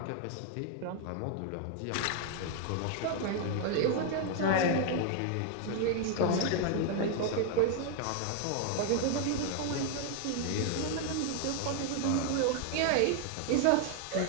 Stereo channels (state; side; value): different; both; correlation 0.00